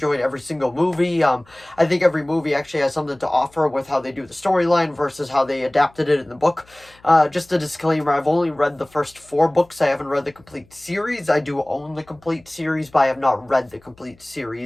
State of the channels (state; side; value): noise; left; hum, 29 dB below the sound